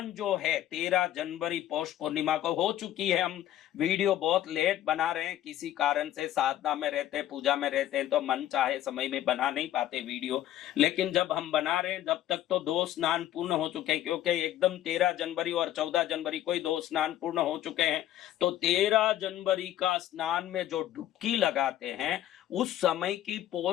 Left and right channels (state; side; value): quieter; right; 12.7 dB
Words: जो है 13 जनवरी पौष पूर्णिमा को हो चुकी है। हम वीडियो बहुत लेट बना रहे हैं, किसी कारण से साधना में रहते हैं, पूजा में रहते हैं, तो मन चाहे समय में बना नहीं पाते वीडियो। लेकिन जब हम बना रहे हैं जब तक तो 2 स्नान पूर्ण हो चुके हैं, क्योंकि एकदम 13 जनवरी और 14 जनवरी को ही 2 स्नान पूर्ण हो चुके हैं। तो 13 जनवरी का स्नान में जो डुबकी लगाते हैं उस समय की